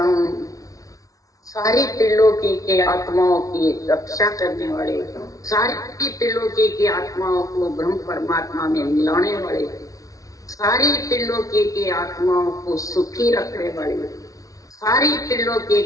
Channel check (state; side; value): late; right; 0.17 ms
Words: हूँ। सारी त्रिलोकी के आत्माओं की रक्षा करने वाले, सारी त्रिलोकी की आत्माओं को ब्रह्म परमात्मा में मिलाने वाले, सारी त्रिलोकी की आत्माओं को सुखी रखने वाले, सारी त्रिलोकी